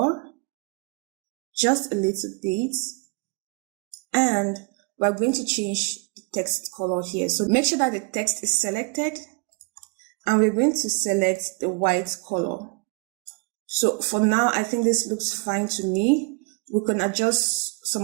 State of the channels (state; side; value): quieter; left; 31.1 dB